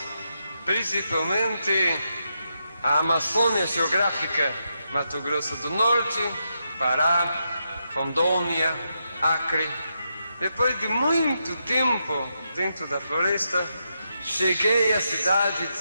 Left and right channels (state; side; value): inverted; both; correlation -0.83